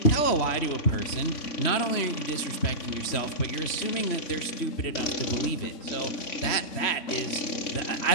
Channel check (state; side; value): late; right; 3.1 ms